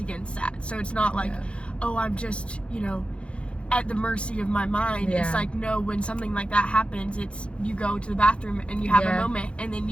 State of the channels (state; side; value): late; right; 0.059 ms